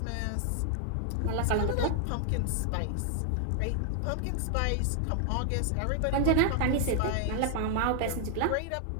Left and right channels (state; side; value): different; both; correlation 0.00